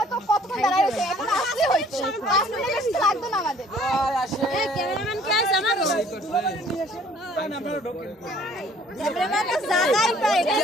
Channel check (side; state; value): both; normal; correlation 0.57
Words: তো কতক্ষণ দাঁড়ায় রয়েছে এখন আসতে হয়েছে 5 মিনিট বেশি লাগবে না আমাদের ক্যামেরাম্যান কে আছে আমার ক্যামেরাম্যান তো জায়গাই পাই